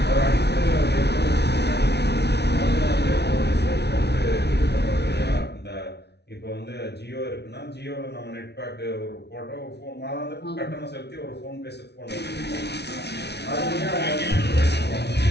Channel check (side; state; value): right; late; 0.49 ms